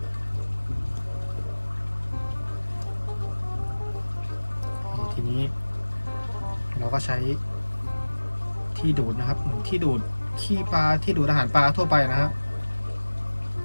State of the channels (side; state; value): both; inverted; correlation -1.00